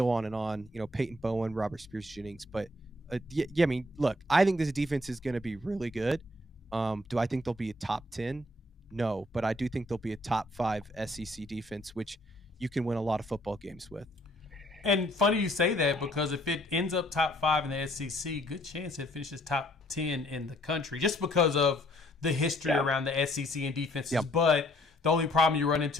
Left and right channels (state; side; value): normal; both; correlation 0.64